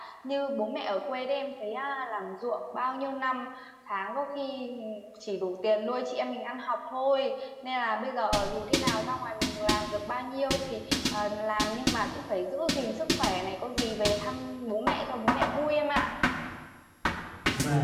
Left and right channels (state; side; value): identical; both; correlation 1.00